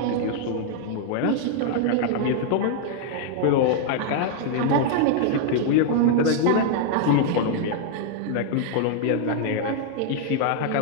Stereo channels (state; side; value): different; both; correlation 0.00